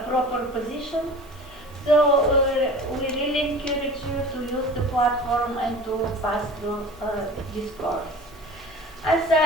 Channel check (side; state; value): both; normal; correlation 0.39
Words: proper position. So we really encourage you to use the platform and to pass through this course. As